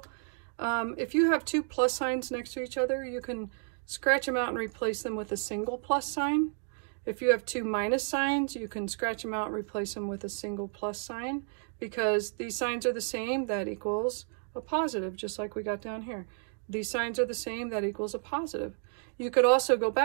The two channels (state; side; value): silent; left; 56 dB below the other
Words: If you have two plus signs next to each other, you can scratch them out and replace them with a single plus sign. If you have two minus signs, you can scratch them out and replace them with a single plus sign. Because these signs are the same, that equals a positive, just like we got down here. These signs are the same, that equals a positive. You could also go